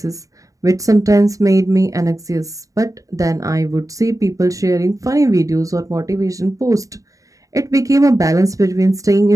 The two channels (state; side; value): late; left; 0.16 ms